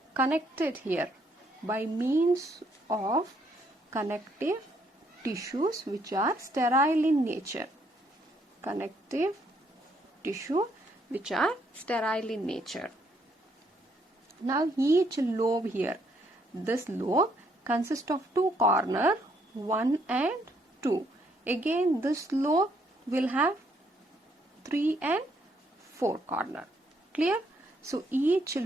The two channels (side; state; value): both; normal; correlation 0.71